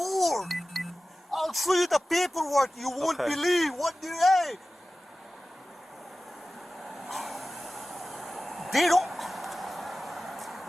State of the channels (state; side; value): normal; both; correlation 0.96